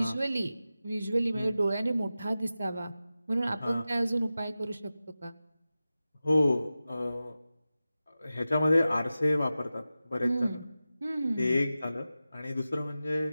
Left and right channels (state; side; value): inverted; both; correlation -0.94